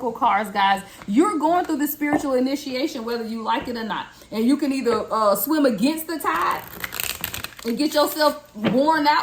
cards, guys. You're going through the spiritual initiation, whether you like it or not. And you can either swim against the tide and get yourself worn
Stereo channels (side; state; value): both; identical; correlation 1.00